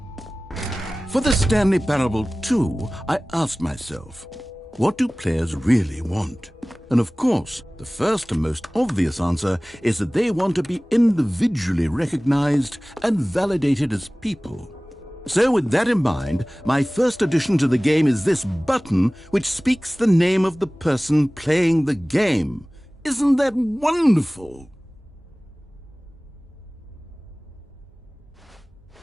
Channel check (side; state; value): both; normal; correlation 0.98